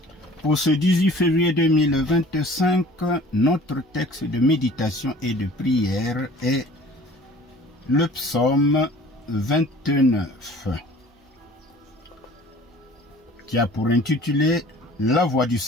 Pour ce 18 février 2025, notre texte de méditation et de prière est le psaume 29, qui a pour intitulé « La voix du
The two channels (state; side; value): normal; both; correlation 0.48